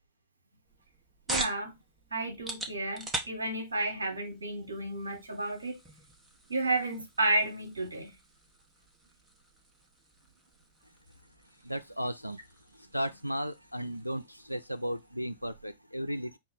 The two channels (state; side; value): inverted; both; correlation -0.68